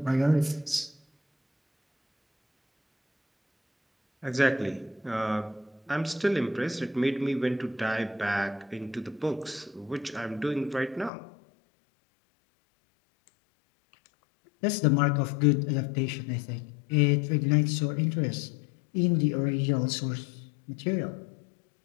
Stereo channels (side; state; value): right; drops out; at 11.1 s